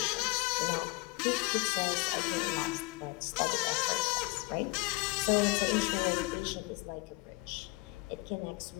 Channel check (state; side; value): quieter; right; 23.6 dB